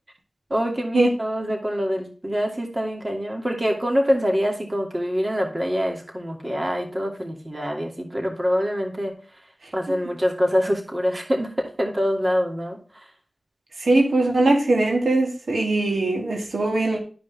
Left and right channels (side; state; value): both; normal; correlation 0.95